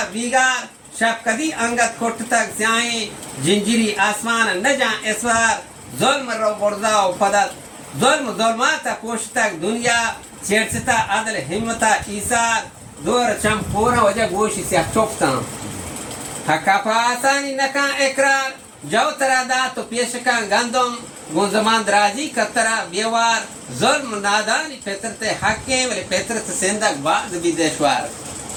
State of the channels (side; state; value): both; identical; correlation 1.00